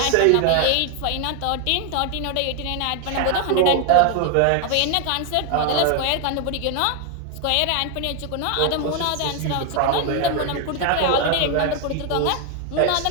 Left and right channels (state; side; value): different; both; correlation 0.01